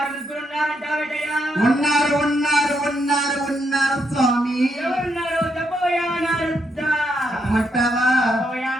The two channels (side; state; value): both; normal; correlation 0.78